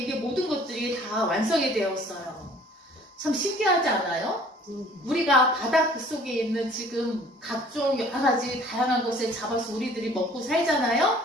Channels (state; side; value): normal; both; correlation 0.53